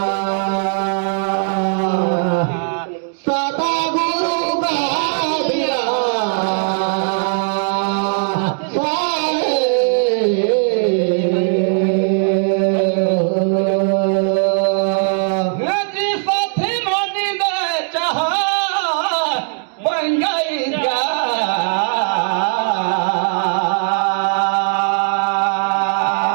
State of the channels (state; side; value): silent; left; 60 dB below the other